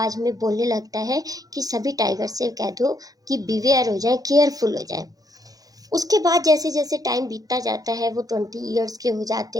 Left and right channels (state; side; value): late; left; 0.18 ms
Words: में बोलने लगता है कि सभी टाइगर से कह दो कि बिवेयर हो जाए, केयरफुल हो जाए। उसके बाद जैसे जैसे टाइम बीतता जाता है वो 20 ईयर्स के हो जाते